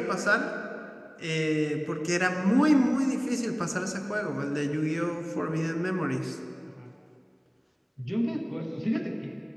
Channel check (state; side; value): identical; both; correlation 1.00